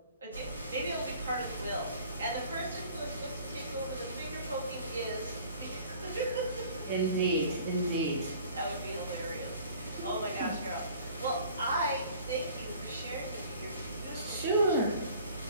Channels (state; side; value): inverted; both; correlation -0.50